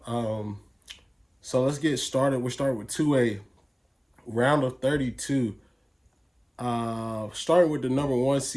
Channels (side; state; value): both; identical; correlation 1.00